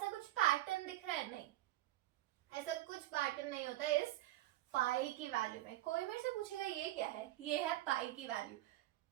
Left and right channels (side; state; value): left; quieter; 15.8 dB